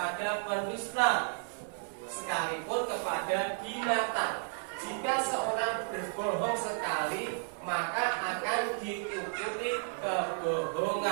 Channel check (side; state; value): left; silent; 56 dB below the other